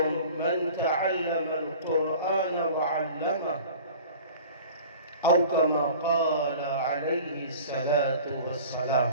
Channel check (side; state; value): both; inverted; correlation -0.42